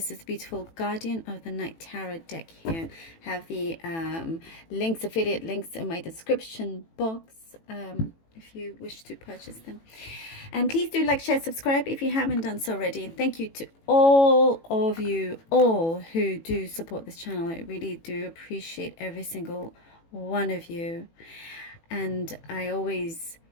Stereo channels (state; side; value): late; right; 18 ms